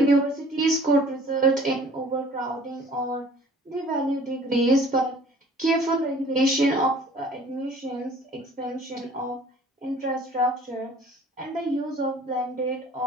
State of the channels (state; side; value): normal; both; correlation 0.51